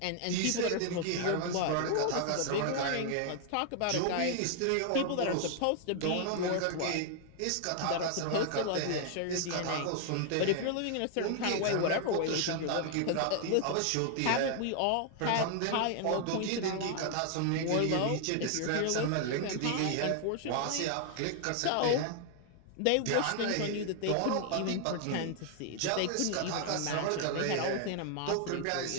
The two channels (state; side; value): different; both; correlation 0.00